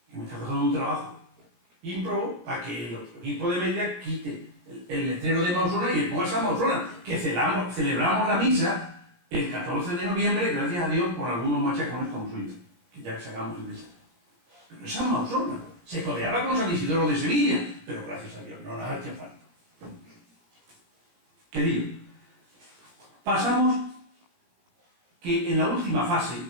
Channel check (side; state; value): left; late; 17 ms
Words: que me está costando un trabajo ímprobo para que el obispo de Mérida quite el letrero de Mausona y le ponga San Mausona, que celebramos la misa el 14 de noviembre, gracias a Dios, por algunos machacones como soy yo, que ya sacamos el desastre. Pero es San Mausona, se codeaba con San Isidoro de Sevilla, pero gracias a Dios, no nos ha hecho falta. Querido, pasamos que en la última fase,